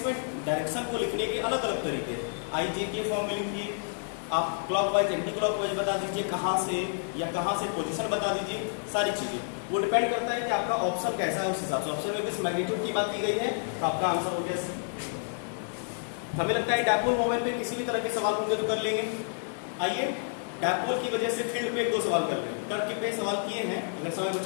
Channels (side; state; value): right; silent; digital silence